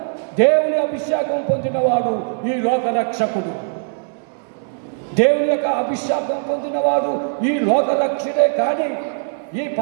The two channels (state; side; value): silent; left; 66 dB below the other